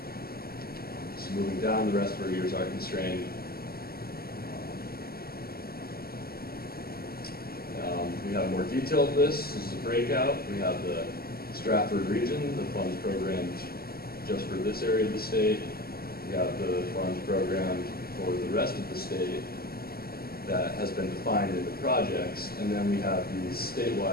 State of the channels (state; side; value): late; right; 0.45 ms